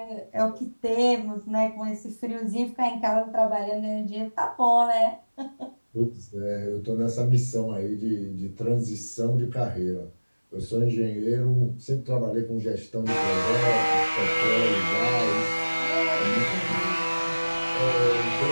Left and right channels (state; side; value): inverted; both; correlation -1.00